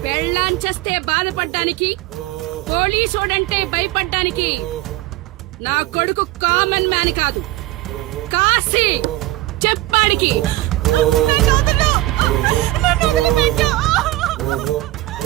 పెళ్ళాంచేస్తే బాధపడ్డానికి, పోలీసోడంటే భయపడ్డానికి నా కొడుకు కామన్ మ్యాన్ కాదు, కాశీ చెప్పాడికి.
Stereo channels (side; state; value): left; quieter; 17.4 dB